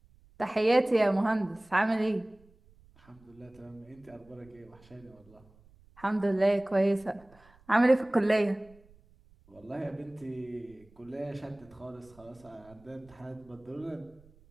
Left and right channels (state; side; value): noise; right; rumble, 28 dB below the sound